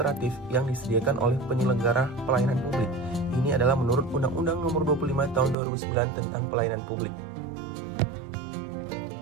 yang disediakan oleh penyelenggara pelayanan publik. Ini adalah menurut Undang-Undang Nomor 25 Tahun 2009 tentang Pelayanan Publik.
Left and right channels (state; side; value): drops out; left; at 5.6 s